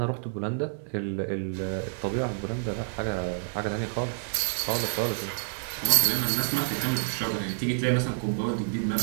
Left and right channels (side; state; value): left; silent; 59 dB below the other